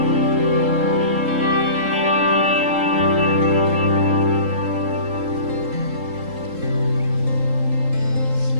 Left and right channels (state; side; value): late; left; 3.7 ms